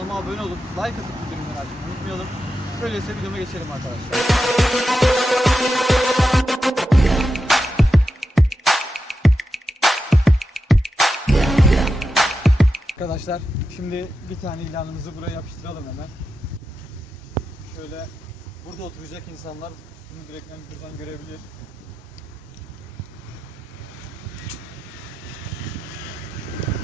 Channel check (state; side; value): normal; both; correlation 0.89